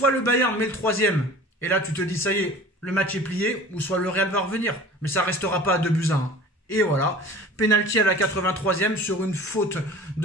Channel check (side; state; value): both; normal; correlation 0.42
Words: le Bayern met le 3e. Et là, tu te dis, ça y est, le match est plié. Ou soit le Real va revenir. Mais ça restera pas à 2 buts à 1. Et voilà. Penalty à la 83e sur une faute